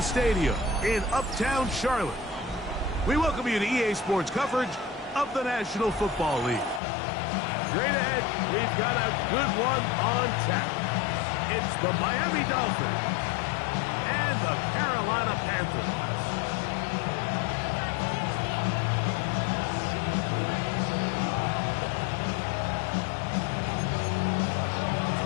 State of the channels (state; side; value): drops out; right; at 6.8 s